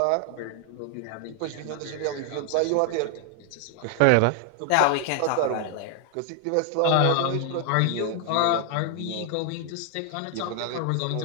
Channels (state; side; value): different; both; correlation 0.00